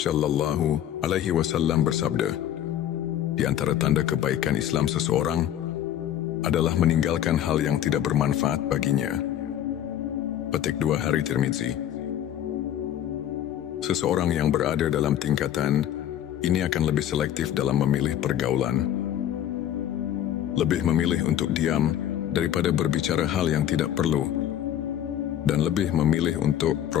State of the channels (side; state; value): right; quieter; 11.0 dB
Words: Alaihi Wasallam bersabda, "Di antara tanda kebaikan Islam seseorang adalah meninggalkan hal yang tidak bermanfaat baginya." Petik 2 hari Tirmizi. Seseorang yang berada dalam tingkatan ini akan lebih selektif dalam memilih pergaulan, lebih memilih untuk diam daripada berbicara hal yang tidak perlu, dan lebih memilih untuk